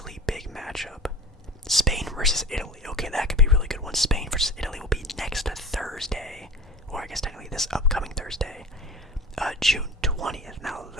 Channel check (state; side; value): normal; both; correlation 0.35